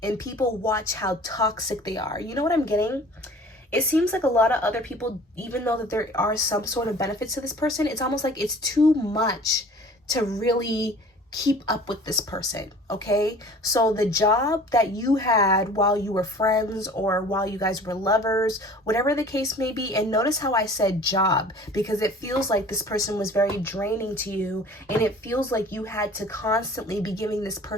and people watch how toxic they are. You know what I'm getting? It seems like a lot of other people, even though that there are some sort of benefits to this person, it's almost like it's too much to really keep up with this person, okay? So the job that you had while you were friends or while you guys were lovers, whatever the case may be, and notice how I said job, because it feels like this person was very draining to you, and it feels like you had to constantly be giving this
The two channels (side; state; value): both; normal; correlation 0.46